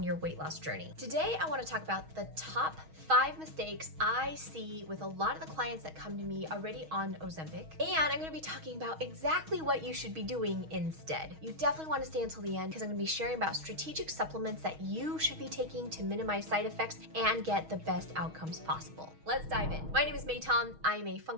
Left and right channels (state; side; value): late; left; 6.3 ms